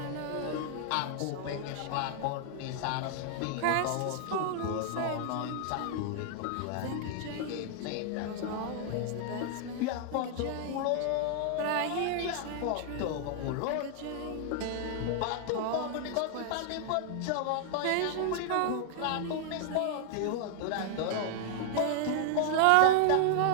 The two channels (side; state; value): both; different; correlation 0.00